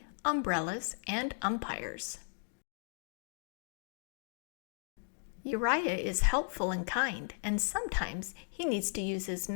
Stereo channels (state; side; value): silent; right; digital silence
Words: umbrellas, and umpires. Uriah is helpful and kind, and sometimes he needs to use his